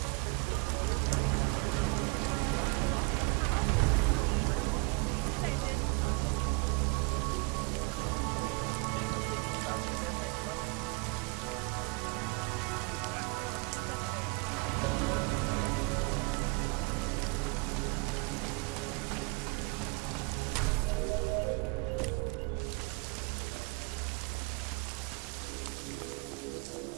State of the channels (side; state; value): left; quieter; 29.7 dB